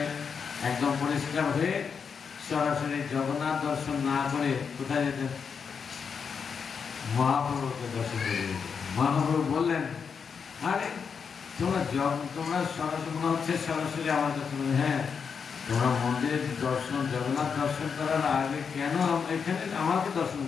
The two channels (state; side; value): quieter; right; 6.2 dB